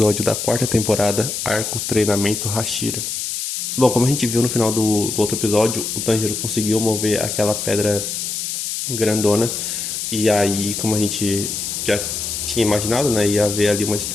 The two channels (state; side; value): noise; left; hiss, 4 dB below the sound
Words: da quarta temporada, arco Treinamento Hashira. Bom, como a gente viu no final do outro episódio, o Tanjiro conseguiu mover aquela pedra grandona, e aí, como a gente já tinha imaginado, né, ia haver ali uma